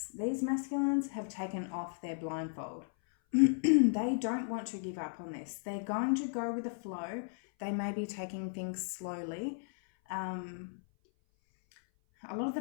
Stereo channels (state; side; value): silent; right; 54 dB below the other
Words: These masculines have taken off their blindfold. They don't want to give up on this. They're going to go with the flow. They may be taking things slowly. A lot of the